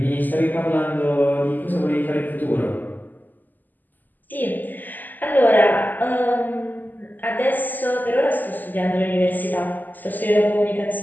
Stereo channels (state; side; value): late; right; 0.086 ms